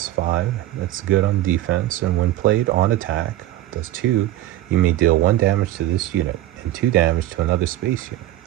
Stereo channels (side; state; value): left; quieter; 14.3 dB